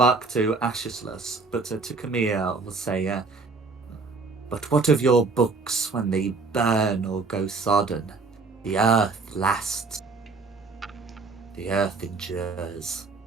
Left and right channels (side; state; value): left; quieter; 4.1 dB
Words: to Ashislus, but to Camille will say, but what of your books when they burn or go sodden? The earth lasts. The earth endures.